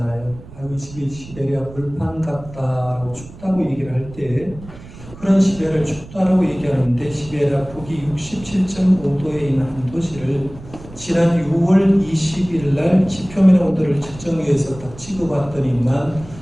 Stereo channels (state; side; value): noise; right; rumble, 17 dB below the sound